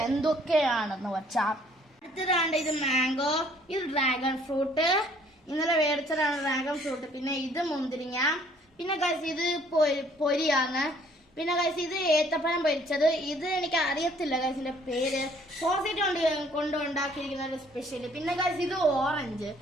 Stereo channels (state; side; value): normal; both; correlation 0.60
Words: എന്തൊക്കെയാണെന്ന് വെച്ചാൽ, അടുത്തതാണ്ട് ഇത് മാംഗോ, ഇത് ഡ്രാഗൺ ഫ്രൂട്ട്, ഇന്നലെ മേടിച്ചതാണ് ഡ്രാഗൺ ഫ്രൂട്ട്, പിന്നെ ഇത് മുന്തിരിങ്ങ, പിന്നെ ഗൈസ് ഇത് പൊരിയാണ്, പിന്നെ ഗൈസ് ഇത് ഏത്തപ്പഴം പൊരിച്ചത്. ഇത് എനിക്ക് അറിയത്തില്ല ഗൈസിന്റെ പേര്. സോസേജ് കൊണ്ട് ഉണ്ടാക്കിയിരിക്കുന്ന ഒരു സ്പെഷ്യൽ. പിന്നെ ഗൈസ് ഇത് ഓറഞ്ച്,